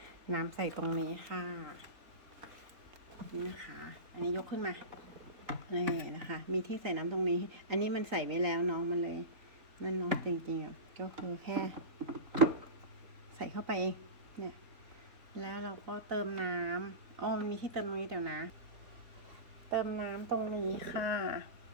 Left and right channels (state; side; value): late; left; 3.9 ms